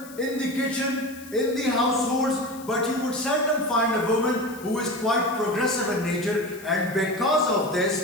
in the kitchen, in the households, but you would seldom find a woman who is quite progressive in nature. And because of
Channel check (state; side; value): noise; left; hiss, 19 dB below the sound